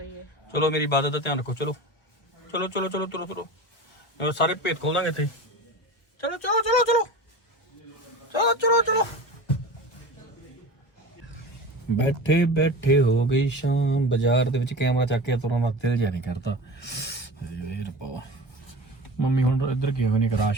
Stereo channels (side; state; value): right; late; 1.0 ms